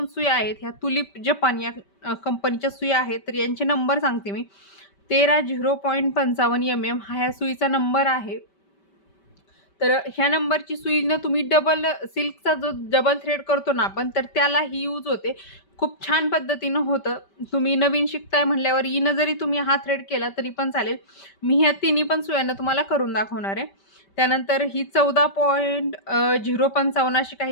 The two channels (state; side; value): late; right; 5.2 ms